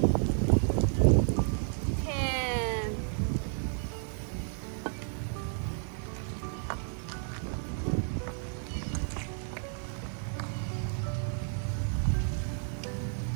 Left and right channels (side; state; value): left; silent; 57 dB below the other